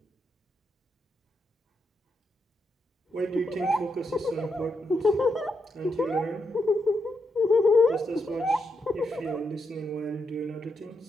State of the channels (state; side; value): normal; both; correlation 0.82